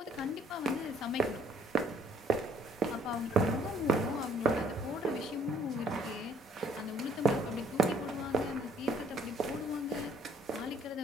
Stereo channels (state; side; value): normal; both; correlation 0.62